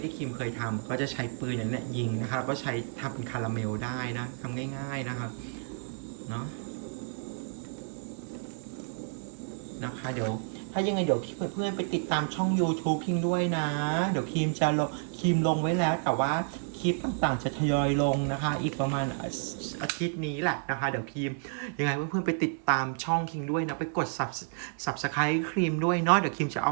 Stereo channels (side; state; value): left; silent; 57 dB below the other